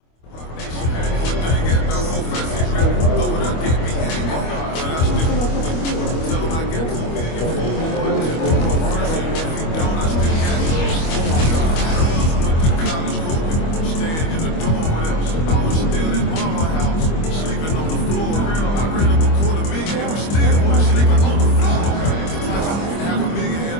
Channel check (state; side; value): late; right; 25 ms